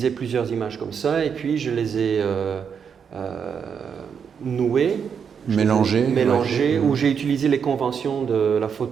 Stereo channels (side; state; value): left; quieter; 7.0 dB